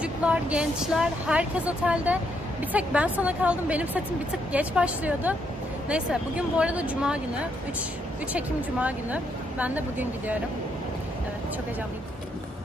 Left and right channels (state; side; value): normal; both; correlation 0.75